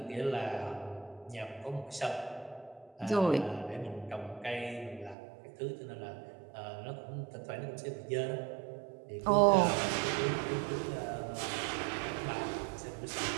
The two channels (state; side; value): drops out; left; at 5.2 s